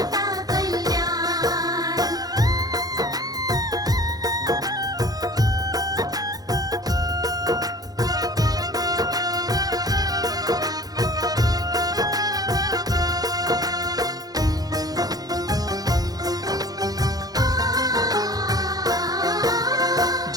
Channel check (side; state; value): left; late; 0.18 ms